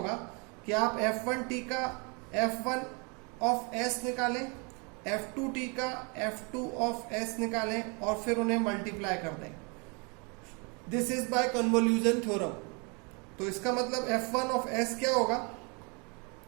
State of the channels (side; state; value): left; quieter; 32.7 dB